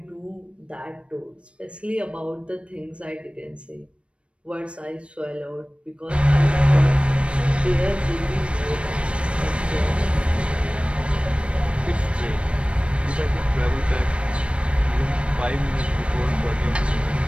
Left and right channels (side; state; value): left; late; 0.060 ms